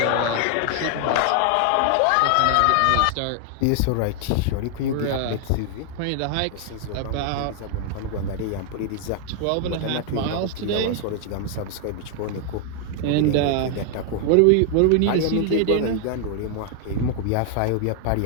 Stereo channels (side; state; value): both; different; correlation 0.00